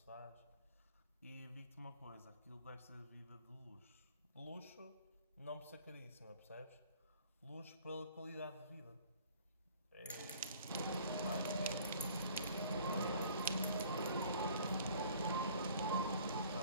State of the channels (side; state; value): both; inverted; correlation -0.53